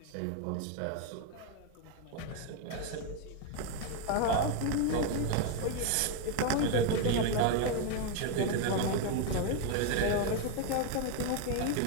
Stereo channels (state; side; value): different; both; correlation 0.01